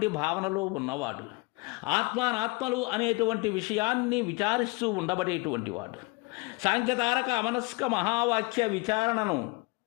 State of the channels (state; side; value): quieter; right; 25.9 dB